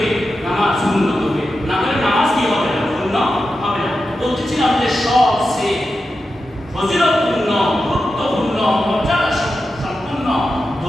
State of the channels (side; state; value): both; normal; correlation 0.90